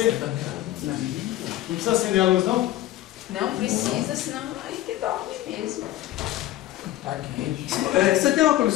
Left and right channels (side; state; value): right; quieter; 14.5 dB